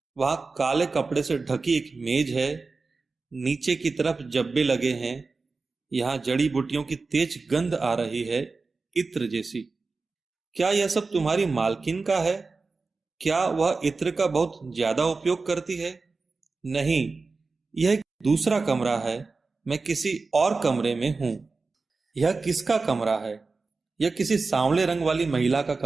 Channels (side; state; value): left; quieter; 4.0 dB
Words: वहां काले कपड़े से ढकी एक मेज है। नीचे की तरफ जब्बे लगे हैं। यहाँ जड़ी बूटियों की तेज गंध आ रही है, इत्र जैसी। क्या यह सब तुम्हारी मालकिन का है? क्या वह इत्र का बहुत ज्यादा उपयोग करती है? नहीं, यह एक दूसरा कमरा है। मैं किसी और कमरे में हूं। यह किसका कमरा है? यह किसी सांवले रंग वाली महिला का